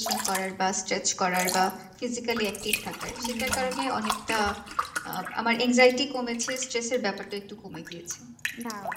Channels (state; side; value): identical; both; correlation 1.00